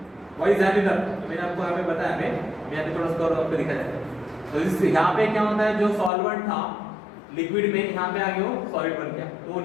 Why is that? तो मैंने आपको यहाँ पे बताया, मैं यहाँ पे थोड़ा सा और आपको दिखा जाता है। तो इस यहाँ पे क्या होता है, जो सॉल्वेंट था लिक्विड में यहाँ पे आ गया वो सॉलिड बन गया, तो वो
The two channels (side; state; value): right; drops out; at 6.1 s